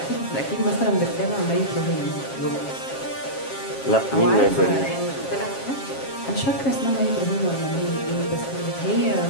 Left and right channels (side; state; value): right; late; 7.4 ms